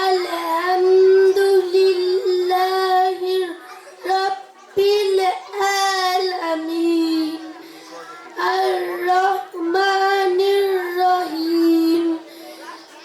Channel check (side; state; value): both; identical; correlation 1.00